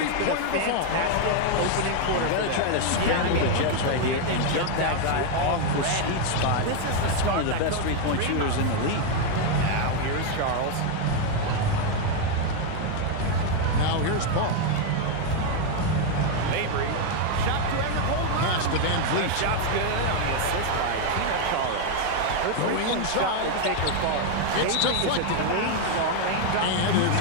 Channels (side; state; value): both; different; correlation 0.01